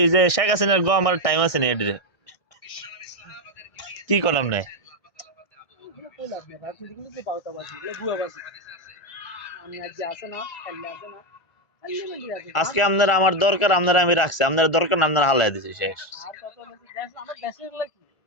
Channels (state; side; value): late; right; 1.4 ms